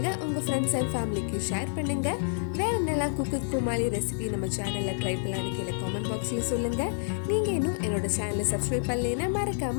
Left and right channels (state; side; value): silent; right; digital silence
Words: உங்க ஃப்ரெண்ட்ஸ் அண்ட் ஃபேமிலிக்கு ஷேர் பண்ணுங்க. வேற என்னெல்லாம் குக்கு குமாலி ரெசிபி நம்ம சேனல்ல ட்ரை பண்ணலான்னு கீழே கமெண்ட் பாக்ஸ்ல சொல்லுங்க. நீங்க இன்னும் என்னோட சேனலை சப்ஸ்கிரைப் பண்ணலைன்னா